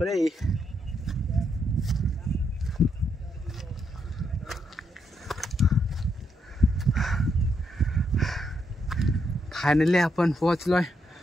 फायनली आपण पोहोचलोय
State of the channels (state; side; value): normal; both; correlation 0.78